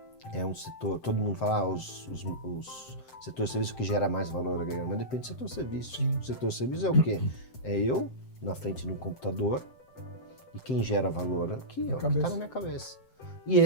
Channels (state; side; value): late; right; 7.7 ms